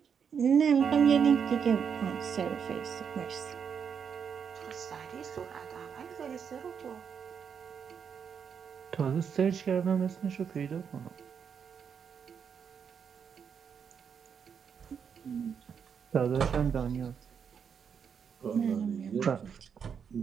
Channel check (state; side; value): quieter; left; 7.1 dB